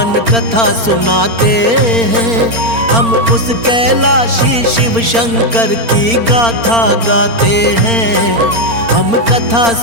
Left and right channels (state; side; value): late; left; 4.3 ms